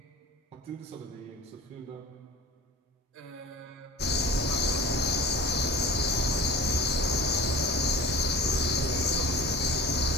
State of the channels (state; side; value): normal; both; correlation 0.38